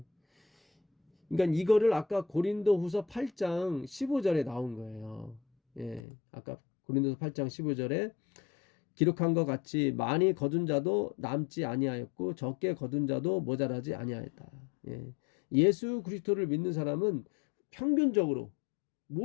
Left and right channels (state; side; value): drops out; right; at 6.0 s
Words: 그러니까 이거를 아까 고린도후서 8장 15절에 나온 거예요. 예. 아까 고린도서 8장 15절에 기록한 것 같이 많이 거둔 자도 남지 아니하였고 적게 거둔 자도 모자라지 아니하였다. 예. 예수 그리스도를 믿는 사람은 평균적으로